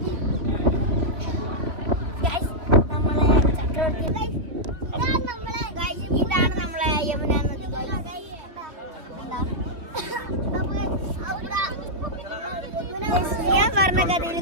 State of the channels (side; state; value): left; late; 2.9 ms